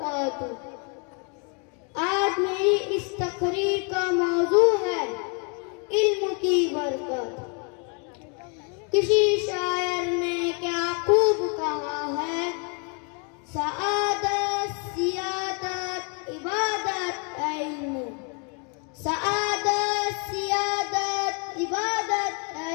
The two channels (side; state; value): right; quieter; 36.9 dB